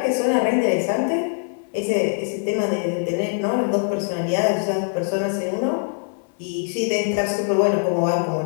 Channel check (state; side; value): silent; right; 57 dB below the other